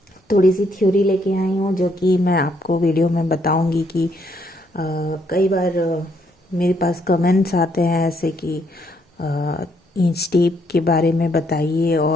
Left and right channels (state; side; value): normal; both; correlation 0.72